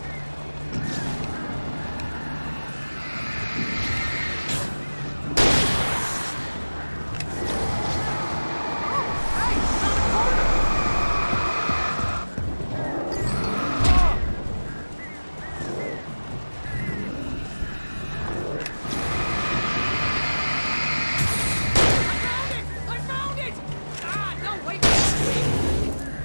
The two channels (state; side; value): inverted; both; correlation -1.00